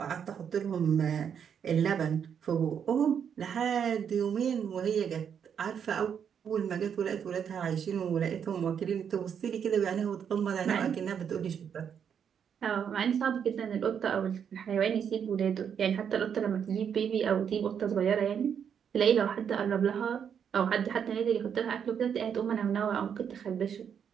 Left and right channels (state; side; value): quieter; left; 7.8 dB